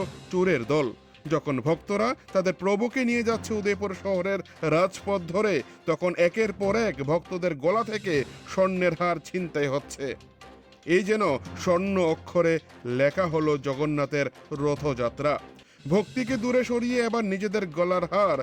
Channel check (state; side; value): identical; both; correlation 1.00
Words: চোরের দল। যখন ভক্তরা তাদের প্রভুকে নিয়ে যাচ্ছে উদয়পুর শহরের রাজপথ ধরে, তখন একের পর এক ভক্তদের গলা থেকে স্বর্ণের হার ছিনতাই হচ্ছে। এই যেন স্বর্ণ অক্ষরে লেখা হলো জগন্নাথের রথযাত্রা। ভক্তিকে দূরে সরিয়ে এবার নিজেদের গলার হার